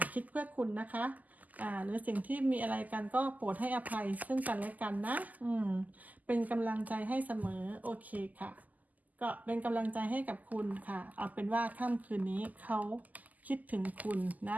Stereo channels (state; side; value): late; left; 0.080 ms